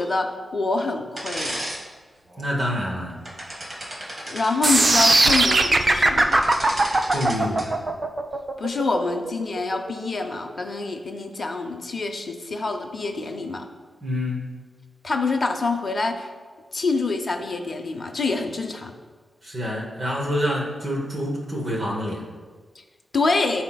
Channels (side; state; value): both; normal; correlation 0.87